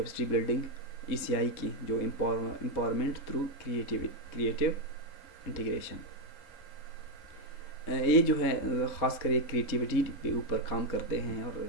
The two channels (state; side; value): late; right; 3.6 ms